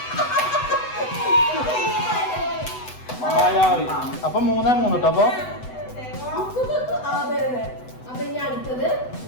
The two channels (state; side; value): late; right; 8.0 ms